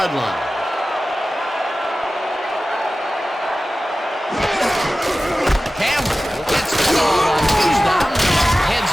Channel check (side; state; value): both; normal; correlation 0.95